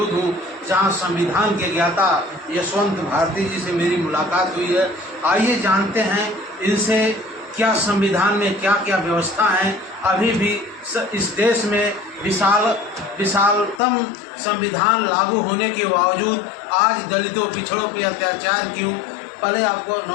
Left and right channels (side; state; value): right; drops out; at 13.8 s